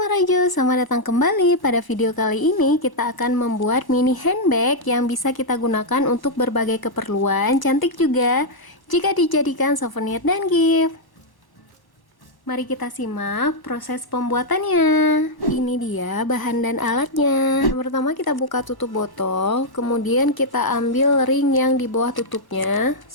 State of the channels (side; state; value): right; late; 1.1 ms